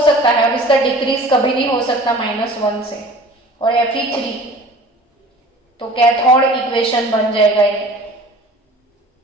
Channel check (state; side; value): normal; both; correlation 0.44